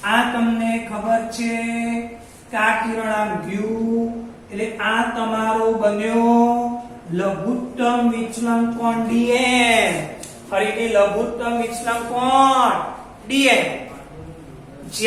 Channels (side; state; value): both; identical; correlation 1.00